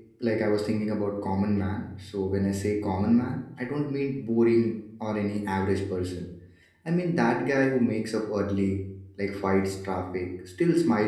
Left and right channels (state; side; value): identical; both; correlation 1.00